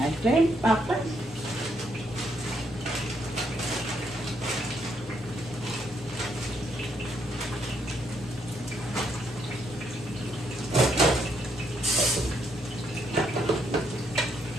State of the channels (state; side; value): normal; both; correlation 0.74